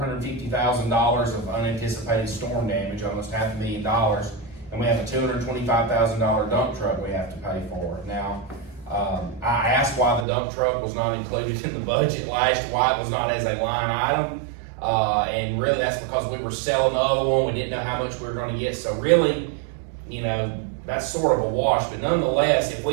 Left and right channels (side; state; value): left; drops out; at 10.2 s